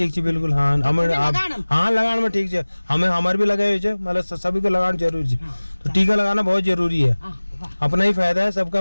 है बिल्कुल। हाँ हाँ लगान में ठीक है। हमें हमारे भी लगाए हुए मतलब सभी को लगाना जरूरी है। तो टीका लगाना बहुत जरूरी है, अपना ही फायदा है, सबका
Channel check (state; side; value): inverted; both; correlation -1.00